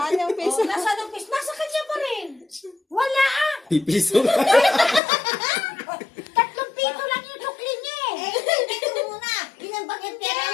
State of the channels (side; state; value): right; drops out; at 5.0 s